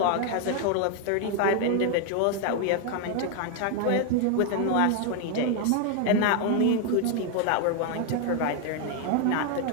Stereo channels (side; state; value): both; different; correlation 0.01